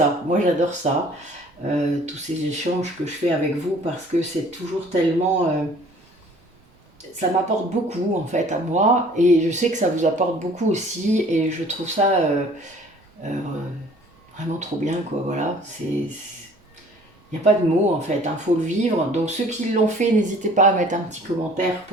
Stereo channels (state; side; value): normal; both; correlation 0.52